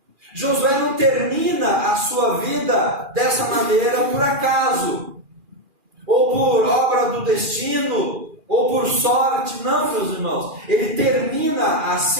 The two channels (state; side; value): late; left; 2.4 ms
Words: Josué não termina a sua vida dessa maneira por acaso, ou por obra do destino, ou por sorte. Não, meus irmãos, ele termina